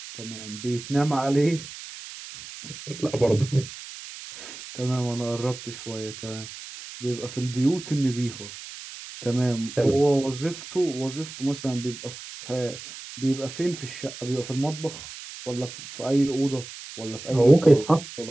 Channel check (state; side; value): noise; right; hiss, 13 dB below the sound